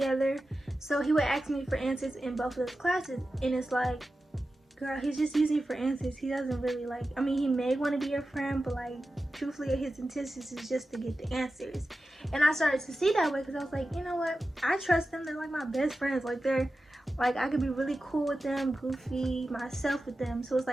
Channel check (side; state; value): both; normal; correlation 0.93